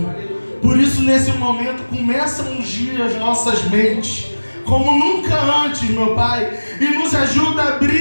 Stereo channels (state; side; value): inverted; both; correlation -1.00